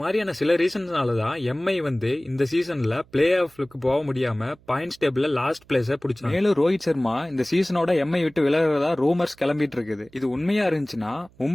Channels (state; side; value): noise; right; hum, 29 dB below the sound